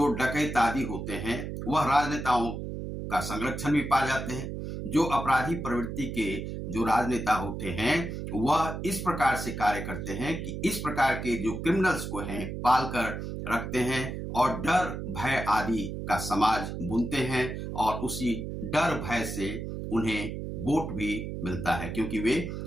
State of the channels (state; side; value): noise; right; hum, 6 dB below the sound